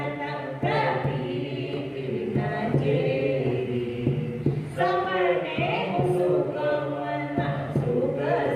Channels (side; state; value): both; identical; correlation 1.00